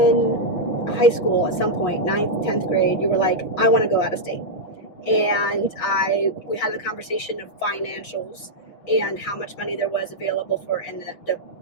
high school at some point, 9th, 10th grade, you were like, I want to go out of state. And we had the conversation of financials and how much money there was available for, and the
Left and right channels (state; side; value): late; right; 6.3 ms